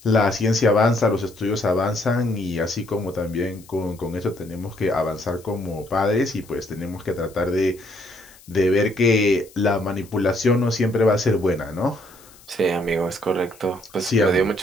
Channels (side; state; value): left; noise; hiss, 24 dB below the sound